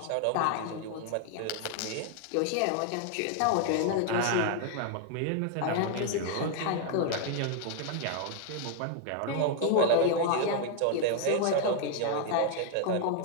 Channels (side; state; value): both; different; correlation 0.00